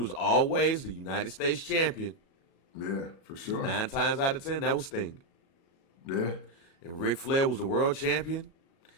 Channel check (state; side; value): late; right; 37 ms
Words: always the United States champion. Yeah, for sure. 9 times out of 10, that was Sting. Yeah. And Ric Flair was the world champion.